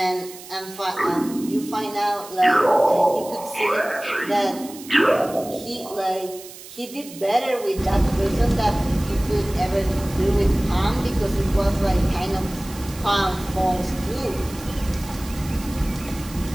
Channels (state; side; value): noise; right; hiss, 16 dB below the sound